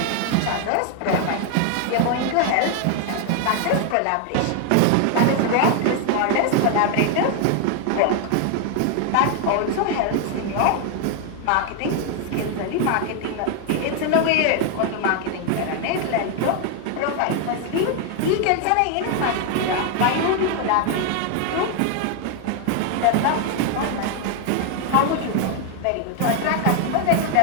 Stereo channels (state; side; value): different; both; correlation 0.01